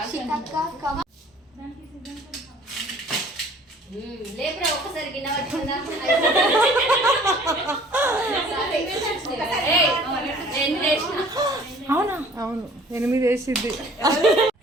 లేపురా ఒక్కసారి గిన్నె పట్టుకుందా అవునా? అవును 8 వేసిద్ది.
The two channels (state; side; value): normal; both; correlation 0.52